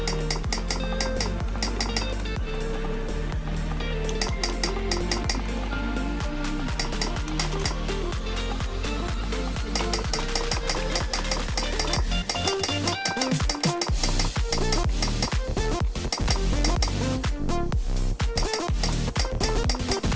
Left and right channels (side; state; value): both; identical; correlation 1.00